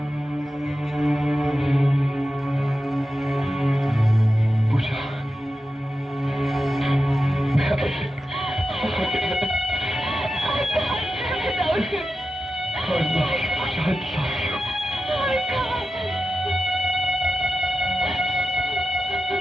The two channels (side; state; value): both; normal; correlation 0.91